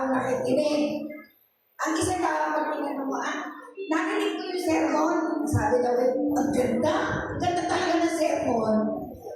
nakikinig. Ang isa daw, pag tinanong mo, narinig ko yung sermon. Sabi daw, ang ganda. Ang ganda talaga ng sermon.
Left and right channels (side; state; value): both; identical; correlation 1.00